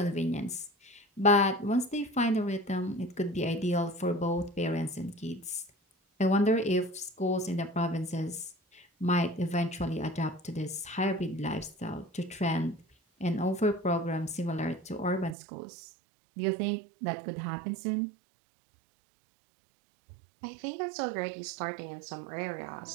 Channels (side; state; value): left; drops out; at 15.4 s